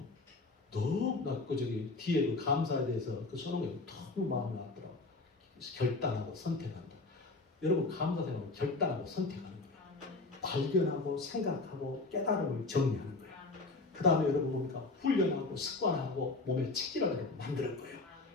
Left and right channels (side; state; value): right; quieter; 3.4 dB